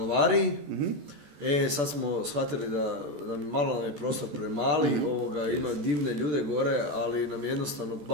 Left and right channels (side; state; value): left; late; 14 ms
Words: sad smo shvatili da malo je prostor premali, ima divne ljude gore, ali nam je jednostavno